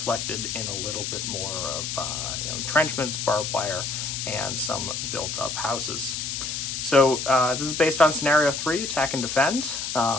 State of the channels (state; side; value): noise; left; hiss, 4 dB below the sound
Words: in a little bit more of entrenchments, barbed wire, and some built-up houses. So this is based on Scenario 3, Attack and Defend.